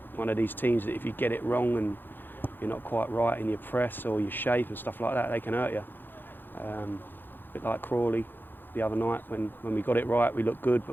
of these teams that if you get it wrong and you're not quite right in your press or your shape and stuff like that, they can hurt you. A bit like Crawley the other night. When we got it right, we looked good,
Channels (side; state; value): right; late; 0.095 ms